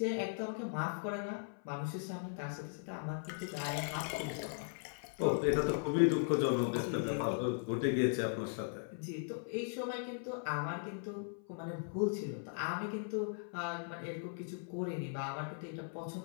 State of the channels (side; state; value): right; silent; 52 dB below the other